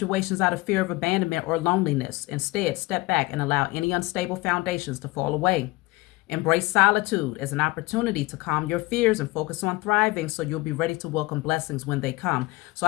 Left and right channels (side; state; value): right; quieter; 21.7 dB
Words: out of fear of abandonment or loneliness. Instead, step back and allow any unstable foundations to fall away. Embrace solitude as an opportunity to calm your fears and focus on thriving so you'll be ready to welcome blessings when they come. So